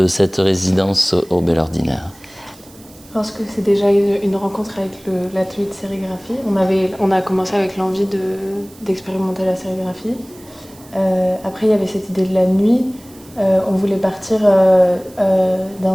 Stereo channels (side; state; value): right; noise; hiss, 25 dB below the sound